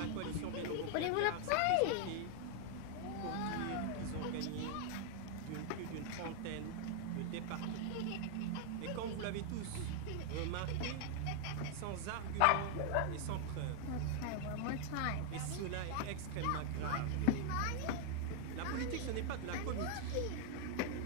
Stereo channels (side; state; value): both; different; correlation 0.00